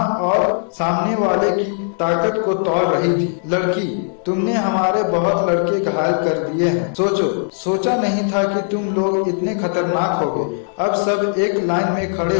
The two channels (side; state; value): right; silent; digital silence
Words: और सामने वाले की ताकत को तौल रही थी। लड़की, तुमने हमारे बहुत लड़के घायल कर दिए हैं। सोचा नहीं था कि तुम लोग इतने खतरनाक होगे। अब सब एक लाइन में खड़े